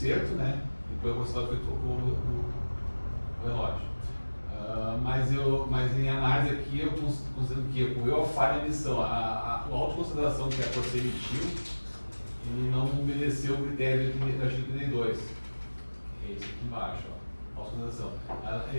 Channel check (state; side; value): inverted; both; correlation -1.00